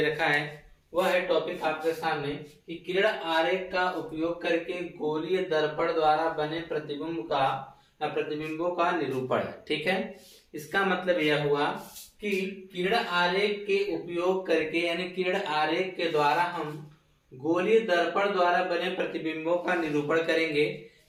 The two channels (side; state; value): both; identical; correlation 1.00